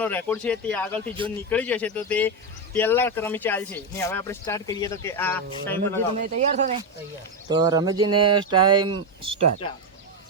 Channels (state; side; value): normal; both; correlation 0.08